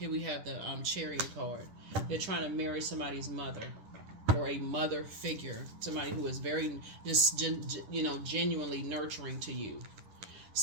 we have the Chariot card. They're trying to marry somebody's mother, or a mother figure, somebody who is very genuinely nurturing to you.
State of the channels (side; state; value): left; late; 10 ms